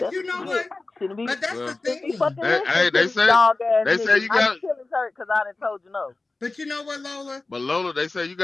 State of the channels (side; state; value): right; quieter; 3.4 dB